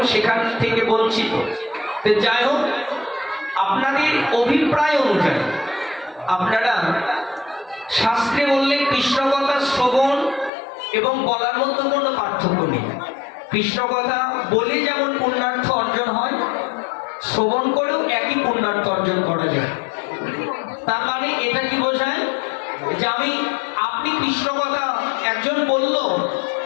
সেখান থেকে বঞ্চিত। যাই হোক, আপনাদের অভিপ্রায় অনুযায়ী আপনারা শাস্ত্রে বললে কৃষ্ণ কথা শ্রবণ এবং বলার মধ্যে কোনো পার্থক্য নেই। কৃষ্ণ কথা বলে যেমন পুণ্যার্থ অর্জন হয়, শ্রবণ করেও একই পুণ্যার্থ অর্জন করা যায়। তার মানে এটা কি বোঝায় যে আপনি কৃষ্ণ কথা একজন বলল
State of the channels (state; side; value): drops out; right; at 10.5 s